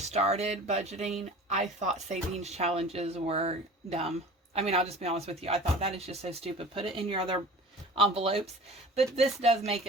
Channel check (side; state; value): both; normal; correlation 0.41